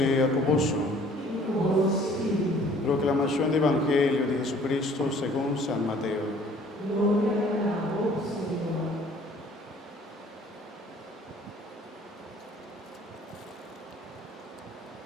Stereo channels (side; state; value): both; normal; correlation 0.55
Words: con vosotros. Proclamación del Evangelio de Jesucristo según San Mateo. Gloria a vos, Señor.